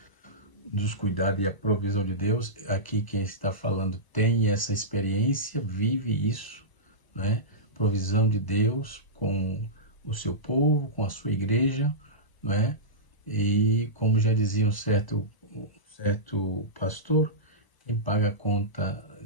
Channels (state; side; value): late; right; 1.0 ms